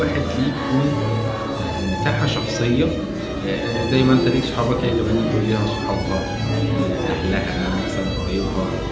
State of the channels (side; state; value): both; identical; correlation 1.00